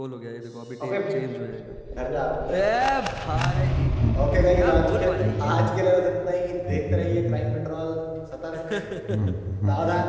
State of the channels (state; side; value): identical; both; correlation 1.00